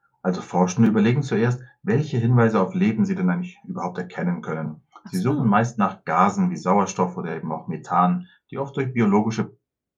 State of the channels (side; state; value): both; identical; correlation 1.00